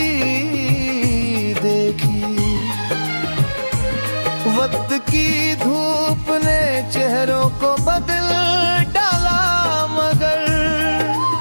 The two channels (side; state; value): both; inverted; correlation -1.00